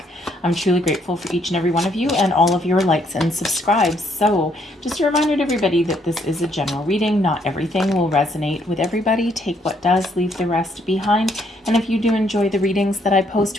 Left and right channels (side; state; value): both; normal; correlation 0.70